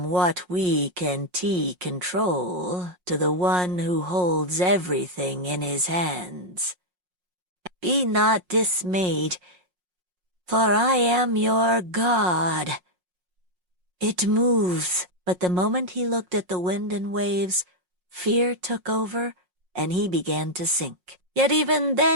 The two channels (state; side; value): late; left; 5.5 ms